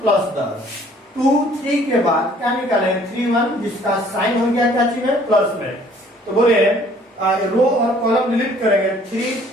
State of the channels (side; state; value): both; normal; correlation 0.57